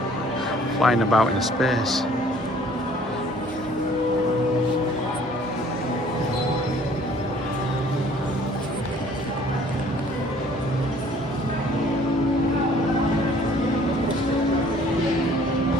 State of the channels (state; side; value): normal; both; correlation 0.56